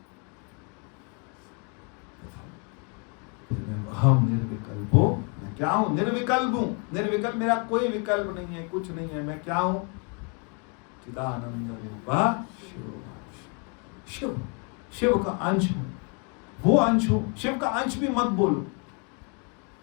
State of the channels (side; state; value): right; quieter; 36.5 dB